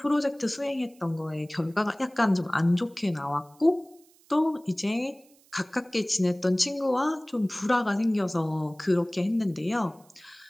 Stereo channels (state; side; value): noise; right; hiss, 30 dB below the sound